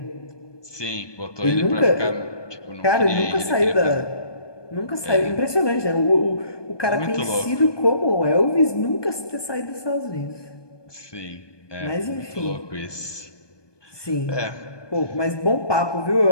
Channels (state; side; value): late; right; 1.2 ms